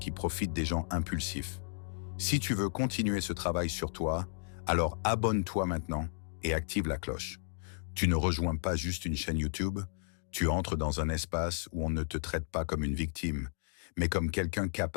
profite des gens impulsifs. Si tu veux continuer ce travail sur toi, alors abonne-toi maintenant et active la cloche. Tu ne rejoins pas juste une chaîne YouTube, tu entres dans un espace où on ne te traite pas comme une victime, mais comme quelqu'un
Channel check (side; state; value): right; silent; digital silence